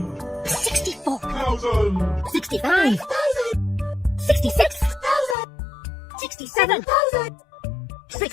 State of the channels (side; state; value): right; drops out; at 5.4 s